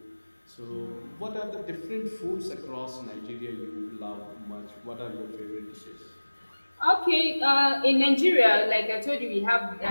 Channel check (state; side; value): inverted; both; correlation -1.00